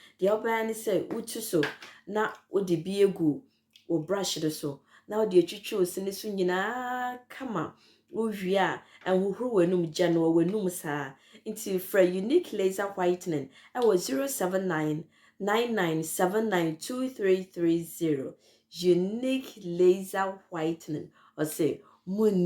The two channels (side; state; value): both; identical; correlation 1.00